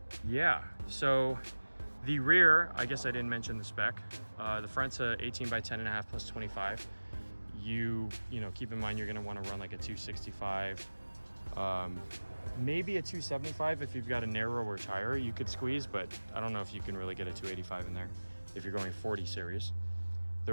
yeah, so the rear, I guess I didn't mention the spec. The front's a 18 by 10.5 plus 25. You know, keep in mind you're gonna wanna run like a 265, maybe a 275 if you've got a narrower tire you could squeeze, but I don't know if you can really get a 285 in there if you're going 40 series.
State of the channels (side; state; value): both; inverted; correlation -1.00